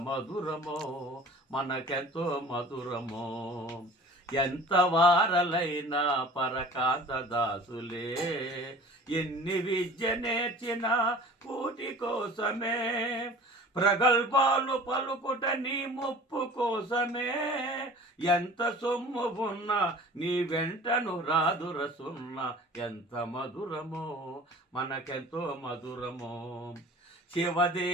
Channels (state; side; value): normal; both; correlation 0.43